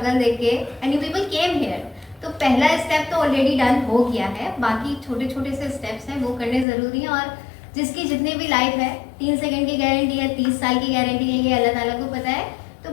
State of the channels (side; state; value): right; drops out; at 6.7 s